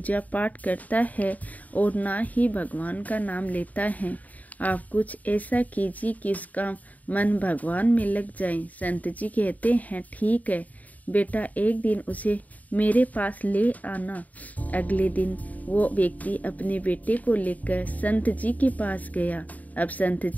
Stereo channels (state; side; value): late; right; 0.075 ms